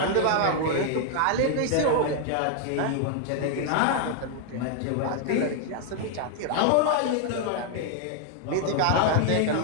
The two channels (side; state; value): both; different; correlation 0.00